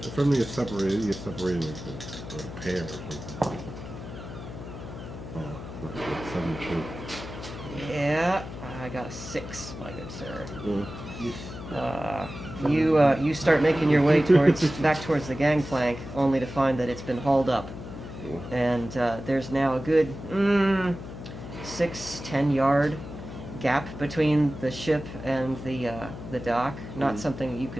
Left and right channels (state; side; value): noise; left; hum, 11 dB below the sound